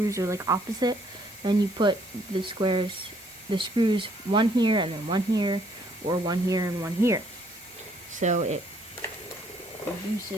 are like opposite, then you put the screws one here and then one here, or one here and one here. So it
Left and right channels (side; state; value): both; normal; correlation 0.66